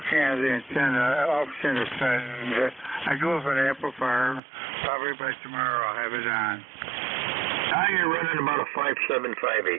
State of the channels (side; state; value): left; drops out; at 4.4 s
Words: on the antenna, off-center side, and I do have an amplifier. Probably by tomorrow I'll have it on. Now you're running about a